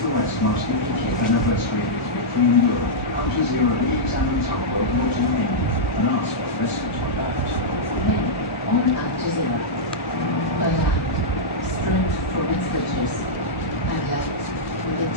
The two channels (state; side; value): normal; both; correlation -0.09